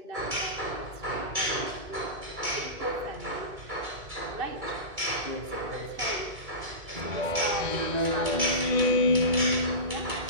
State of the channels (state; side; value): late; left; 2.2 ms